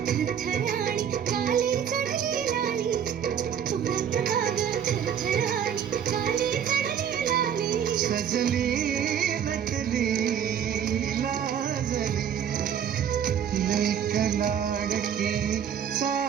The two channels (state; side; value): quieter; left; 8.6 dB